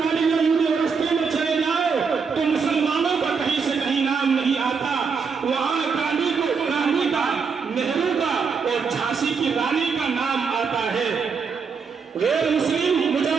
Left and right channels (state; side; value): quieter; left; 5.6 dB